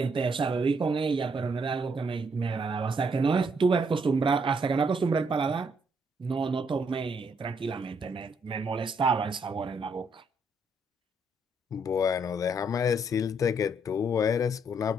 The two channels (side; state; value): both; normal; correlation 0.72